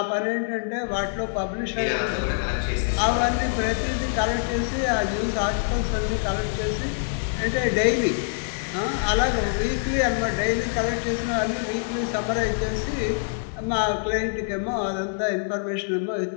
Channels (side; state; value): right; silent; 60 dB below the other